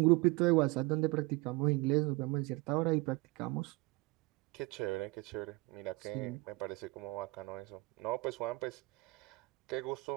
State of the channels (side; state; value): left; quieter; 23.6 dB